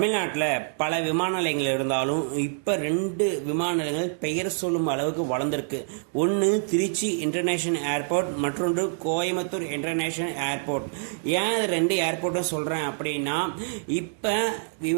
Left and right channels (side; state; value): left; silent; digital silence